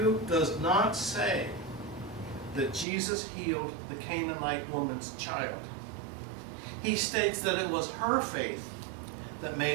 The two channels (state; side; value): drops out; left; at 2.9 s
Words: does not say that Jesus healed the Canaanite woman's child. He states that it was her faith that